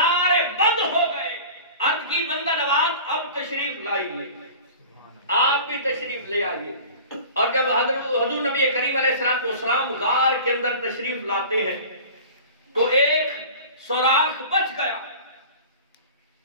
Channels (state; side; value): inverted; both; correlation -0.39